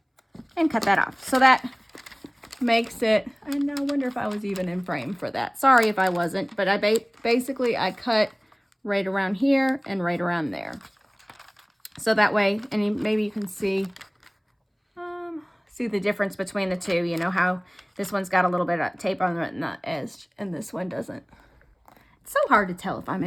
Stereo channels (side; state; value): both; identical; correlation 1.00